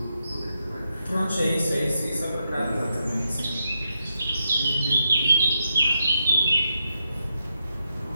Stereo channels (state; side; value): inverted; both; correlation -0.84